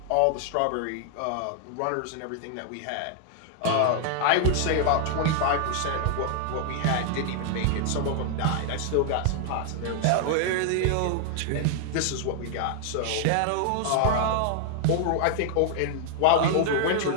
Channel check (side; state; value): both; different; correlation 0.00